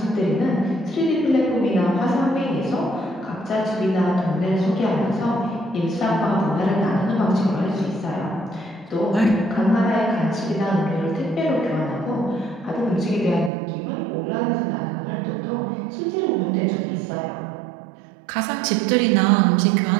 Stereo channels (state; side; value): drops out; left; at 13.5 s